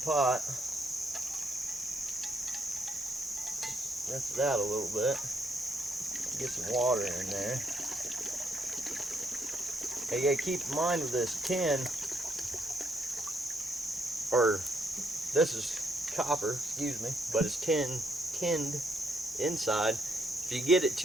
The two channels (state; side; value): normal; both; correlation 0.74